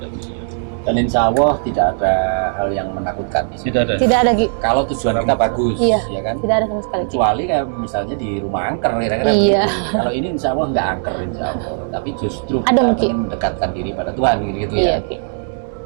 Dan insya Allah tidak ada hal yang menakutkan di sini. Tidak ada. Tidak ada Ki. Kalau tujuan kita bagus, Iya. ya kan? Tidak ada sama sekali. Kecuali kayak misalnya di rumah angker kira-kira Iya. begitu. Kalau ini insya Allah nggak angker insya Allah, tapi justru Ada kita mungkin. ingin mendekatkan diri pada Tuhan gitu Iya, ya. Ki.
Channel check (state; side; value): silent; left; 65 dB below the other